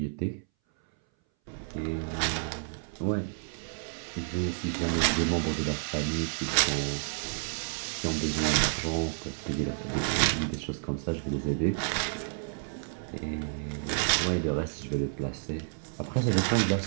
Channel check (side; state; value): left; silent; 58 dB below the other